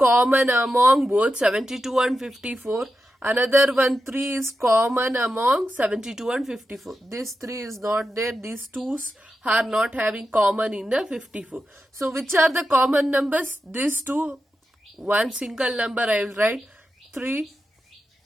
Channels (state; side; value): normal; both; correlation 0.89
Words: among both 72 and 54. Another one, 3 is common among 72 and 54. This 3 is not there. These 2's are not having common in the 54. So which are the common numbers? These two, one single number I will write 3,